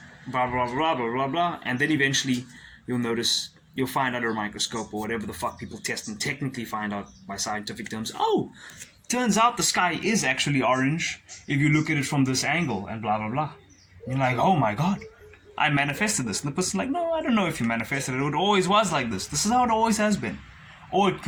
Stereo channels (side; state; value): both; identical; correlation 1.00